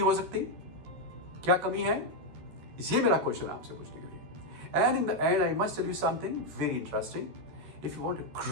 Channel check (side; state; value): left; late; 13 ms